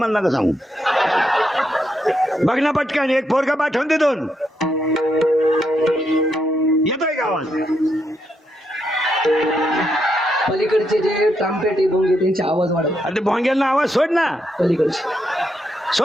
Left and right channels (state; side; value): normal; both; correlation 0.80